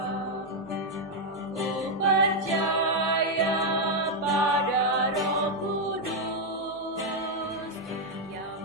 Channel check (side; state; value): both; normal; correlation 0.00